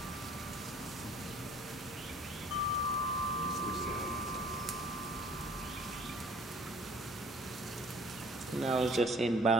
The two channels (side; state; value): both; normal; correlation 0.54